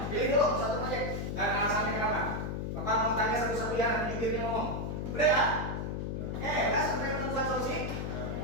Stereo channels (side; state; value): left; noise; hum, 3 dB below the sound